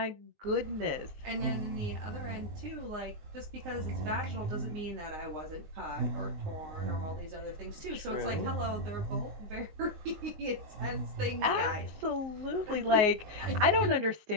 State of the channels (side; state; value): left; late; 19 ms